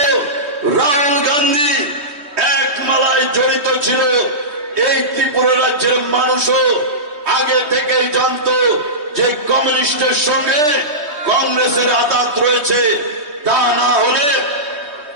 রাহুল গান্ধী এক মালায় জড়িত ছিল। এই ত্রিপুরা রাজ্যের মানুষও আগে থেকেই জানতো যে কমিউনিস্টের সঙ্গে কংগ্রেসের আঘাত রয়েছে। তা না হলে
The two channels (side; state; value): left; late; 3.2 ms